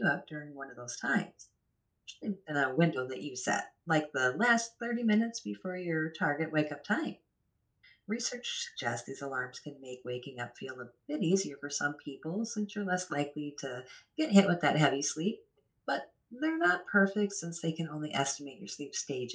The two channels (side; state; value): both; identical; correlation 1.00